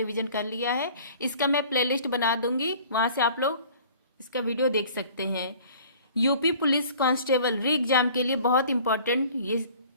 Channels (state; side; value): inverted; both; correlation -0.49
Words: कर लिया है। इसका मैं प्लेलिस्ट बना दूंगी, वहां से आप लोग इसका वीडियो देख सकते हैं। यूपी पुलिस कांस्टेबल री एग्जाम के लिए बहुत इंपॉर्टेंट ये